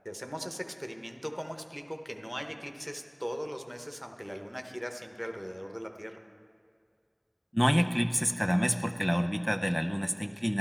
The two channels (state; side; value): identical; both; correlation 1.00